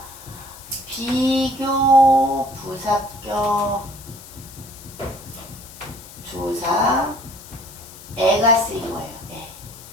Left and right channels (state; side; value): noise; left; hiss, 17 dB below the sound